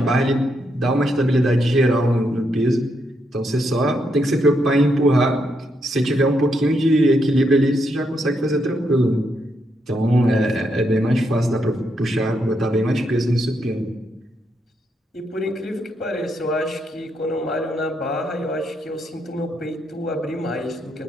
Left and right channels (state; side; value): normal; both; correlation 0.79